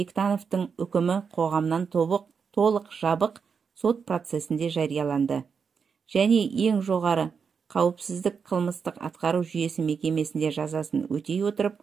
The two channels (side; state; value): left; quieter; 6.0 dB